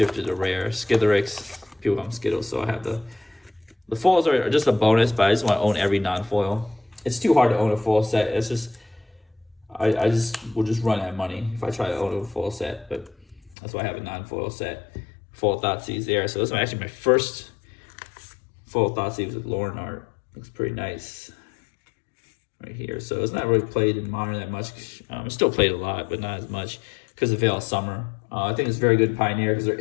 to rare. Skitherix, people call them Skittles, so I have the foils are just a bonus, but I just want to own every non-foil. It's too hard to own a full set. It's just I will just run out of money if I try to own a full set, but that's why I have a non-foil set. Full Thoughtseize there. So this is actually my first full Thoughtseize with Lauren art. Looks pretty nice right here. So it's not really played in Modern that much. It's still played a lot, but not as much because of Veil of Summer. I think it's very good in Pioneer because there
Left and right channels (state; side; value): drops out; right; at 13.6 s